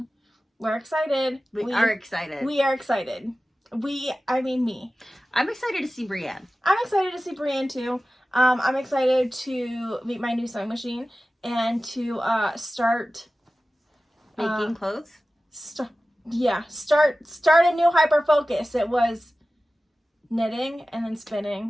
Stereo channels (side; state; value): both; normal; correlation 0.96